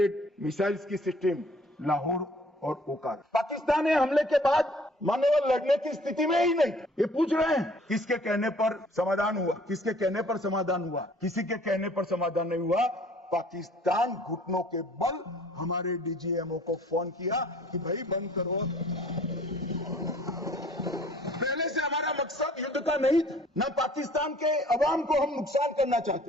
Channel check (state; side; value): normal; both; correlation 0.54